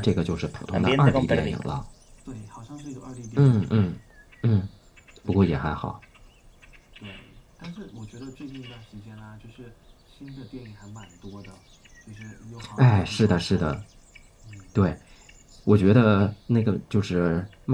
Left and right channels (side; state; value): both; identical; correlation 1.00